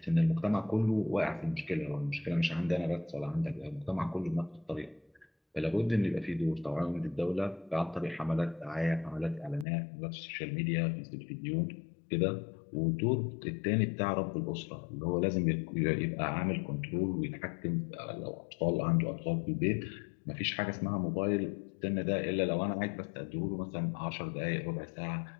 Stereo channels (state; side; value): drops out; right; at 9.7 s